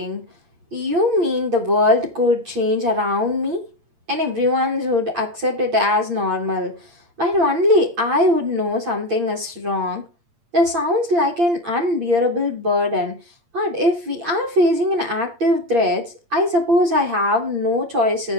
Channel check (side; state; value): left; late; 8.6 ms